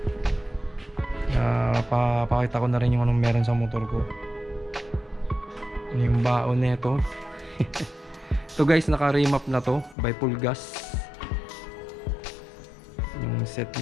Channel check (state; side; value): drops out; right; at 10.0 s